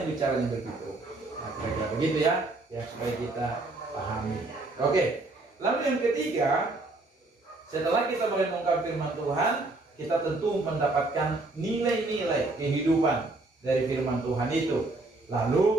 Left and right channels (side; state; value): left; quieter; 3.1 dB